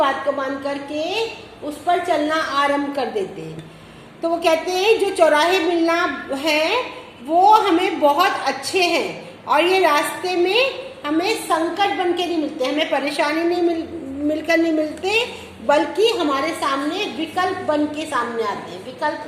को मान करके उस पर चलना आरंभ कर देते हैं। तो वो कहते हैं जो चौराहे मिलना है वो हमें बहुत अच्छे हैं और ये रास्ते में हमें संकट बन के नहीं मिलते, हमें परेशानी नहीं मिलकर नहीं मिलते, बल्कि हमारे सामने विकल्प बन के सामने आते हैं। विकल्प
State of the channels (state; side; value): identical; both; correlation 1.00